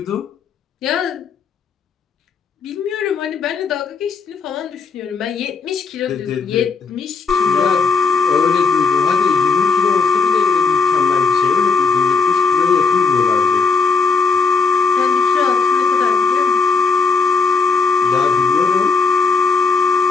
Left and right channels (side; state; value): right; quieter; 5.0 dB